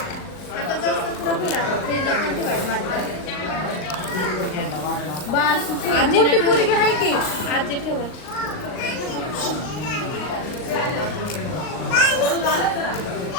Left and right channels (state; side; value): late; right; 39 ms